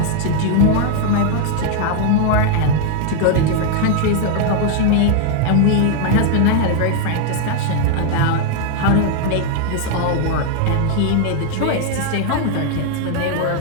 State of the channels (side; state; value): both; different; correlation 0.00